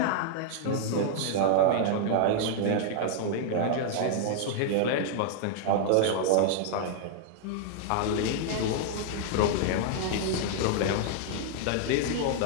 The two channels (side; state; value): both; different; correlation 0.00